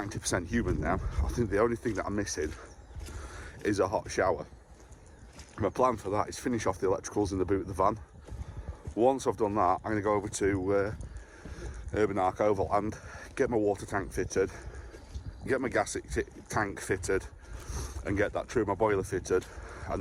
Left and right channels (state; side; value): identical; both; correlation 1.00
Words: human now. I think the only thing that I'm missing is a hot shower. My plan for that is finish off the electricals in the boot of the van. Once I've done that, I'm going to go over to Urban Arc Overland, get my water tank fitted, get my gas tank fitted, and get that through my boiler fitted. And